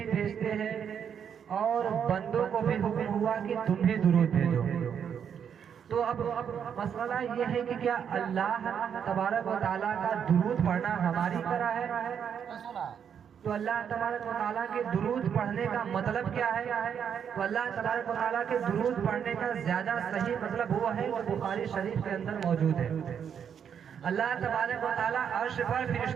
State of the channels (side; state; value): left; quieter; 7.9 dB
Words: بھیجتے ہیں، اور بندوں کو بھی حکم ہوا کہ تم بھی درود بھیجو۔ تو اب مسئلہ یہ ہے کہ کیا اللہ تبارک و تعالیٰ کا درود پڑھنا ہماری طرح ہے؟ تو اللہ تبارک و تعالیٰ کے درود پڑھنے کا مطلب کیا ہے؟ تو اللہ تبارک و تعالیٰ کے درود پڑھنے کا زیادہ صحیح مطلب وہ ہے جو بخاری شریف کے اندر موجود ہے۔ اللہ تبارک و تعالیٰ عرش پر